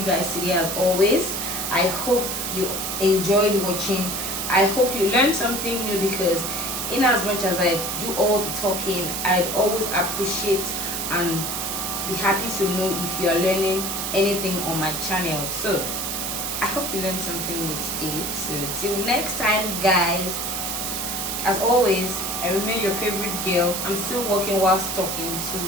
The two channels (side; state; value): right; noise; hiss, 3 dB below the sound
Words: guys today, as always. I hope you enjoyed watching. I hope you learned something new, because in as much as I do all the talking, I'd always appreciate and be happy to know if you are learning anything on my channel. So I hope you learned something new today. So till next time, guys, as always, I remain your favorite girl. I'm still working whilst talking to